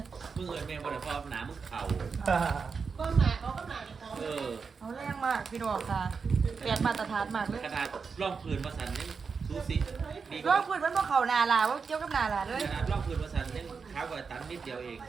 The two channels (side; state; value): left; quieter; 5.3 dB